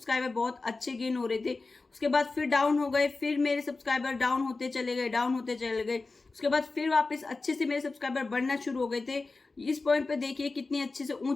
बहुत अच्छे गेन हो रहे थे, उसके बाद फिर डाउन हो गए, फिर मेरे सब्सक्राइबर डाउन होते चले गए, उसके बाद फिर वापस अच्छे से मेरे सब्सक्राइबर बढ़ना शुरू हो गए थे। इस पॉइंट पे देखिए कितनी अच्छे से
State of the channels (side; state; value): right; quieter; 3.7 dB